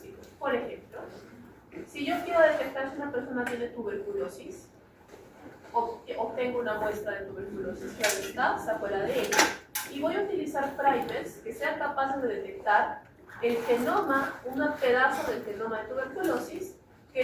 Por ejemplo, si yo quiero detectar si una persona tiene tuberculosis, obtengo una muestra de tuberculosis, claro está, saco el ADN, y voy a utilizar primers que sean capaces de detectar el genoma, un pedazo del genoma de tuberculosis que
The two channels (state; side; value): identical; both; correlation 1.00